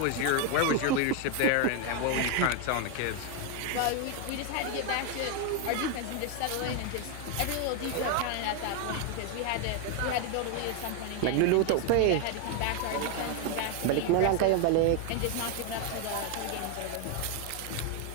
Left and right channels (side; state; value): both; different; correlation 0.01